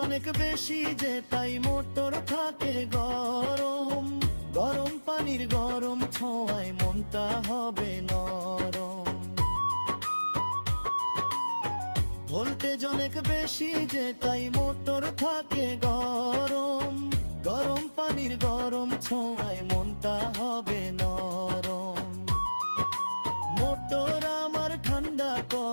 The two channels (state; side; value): inverted; both; correlation -1.00